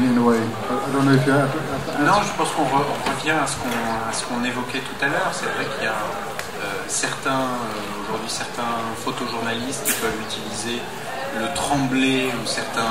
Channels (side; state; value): both; identical; correlation 1.00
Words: a way. I don't know if you have. Non, je pense qu'on revient à ce qu'on évoquait tout à l'heure. C'est vrai qu'il y a aujourd'hui certains photojournalistes qui peuvent utiliser le tremblé ou